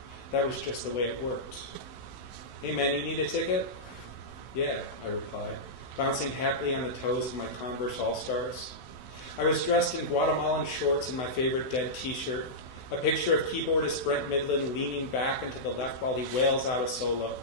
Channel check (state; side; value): late; right; 16 ms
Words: That was just the way it worked. Hey man, you need a ticket? Yeah, I replied, bouncing happily on the toes of my Converse All-Stars. I was dressed in Guatemalan shorts and my favorite Dead t-shirt, a picture of keyboardist Brent Midland leaning back and to the left while he wails out a solo.